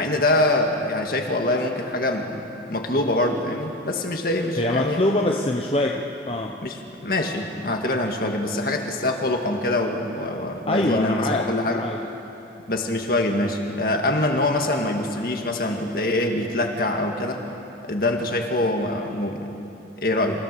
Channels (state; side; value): normal; both; correlation 0.28